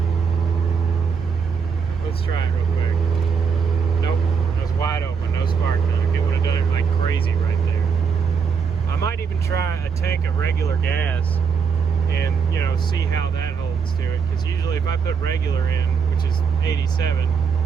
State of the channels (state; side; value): quieter; left; 6.1 dB